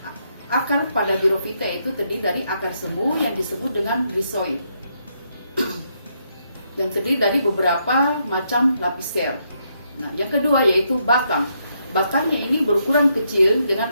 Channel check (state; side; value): inverted; both; correlation -0.77